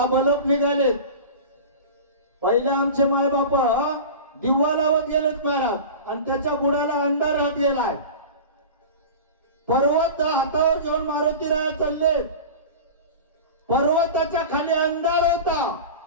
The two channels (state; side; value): inverted; both; correlation -0.32